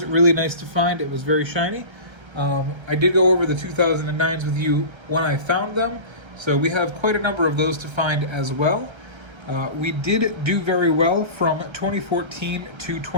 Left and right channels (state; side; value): late; left; 1.3 ms